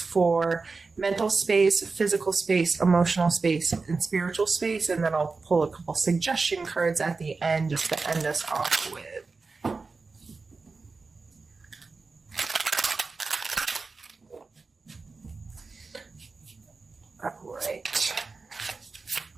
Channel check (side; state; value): left; quieter; 4.1 dB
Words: mental space, physical space, emotional space, and spiritual space, and then I'll pull a couple suggestion cards at the end just to end us off with. All right.